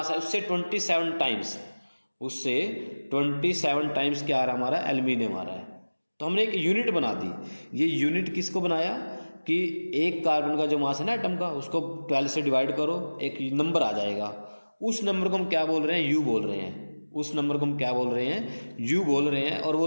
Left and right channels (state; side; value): inverted; both; correlation -1.00